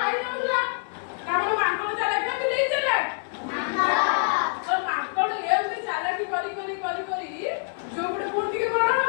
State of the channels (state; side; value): silent; right; digital silence